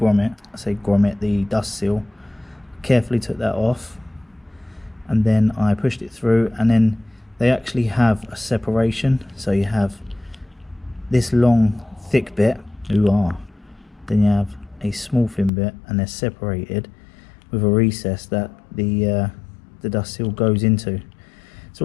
I say grommet, the dust seal. Carefully took that off, and then I pushed it through, and then they actually have a separation. So you have this long thick bit, then you have a small thin bit, and they're separated with a recess that the dust seal goes into.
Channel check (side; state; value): right; drops out; at 15.5 s